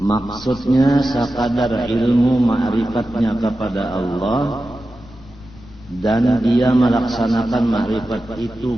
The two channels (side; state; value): both; normal; correlation 0.93